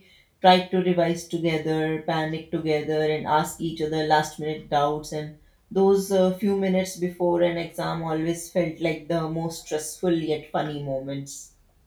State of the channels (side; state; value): both; identical; correlation 1.00